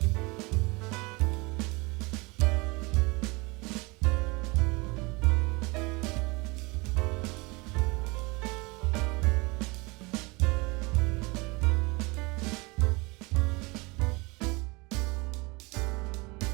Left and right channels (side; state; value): left; quieter; 26.1 dB